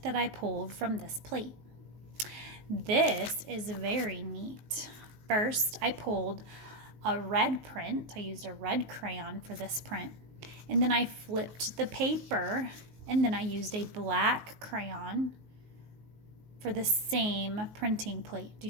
that I pulled from this plate. This is very neat. First, I pulled a red print. I used a red crayon for this print. And then I flipped the paper, and then I used a black crayon for the same printing plate. Do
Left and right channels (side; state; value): left; late; 19 ms